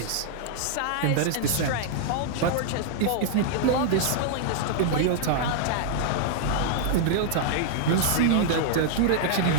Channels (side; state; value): both; different; correlation -0.01